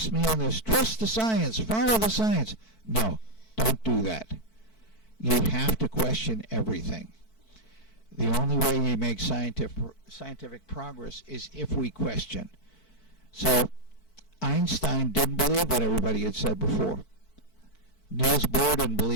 me on this, trust the science, follow the science. No, don't do that. You have to question everything. The only way we make scientific progress is if we question. So Einstein didn't believe what everybody had said before. Niels Bohr didn't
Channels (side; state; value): right; late; 4.5 ms